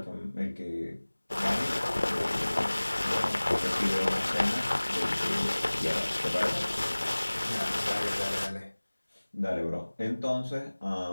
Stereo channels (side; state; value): both; inverted; correlation -1.00